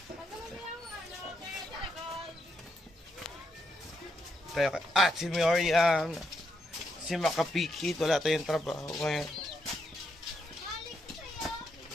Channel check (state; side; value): normal; both; correlation 0.79